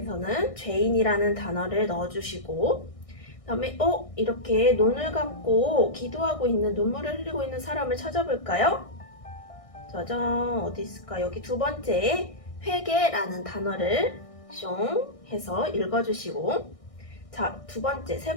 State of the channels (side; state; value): right; late; 1.6 ms